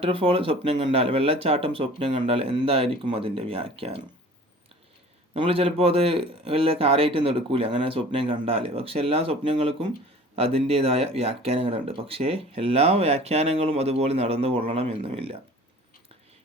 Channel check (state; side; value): normal; both; correlation 0.45